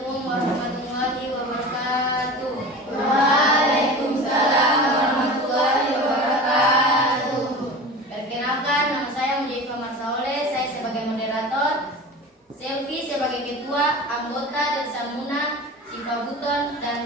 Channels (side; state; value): both; normal; correlation 0.34